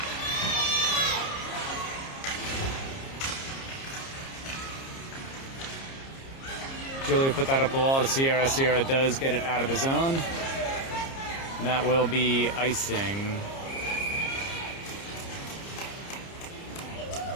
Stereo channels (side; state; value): right; late; 30 ms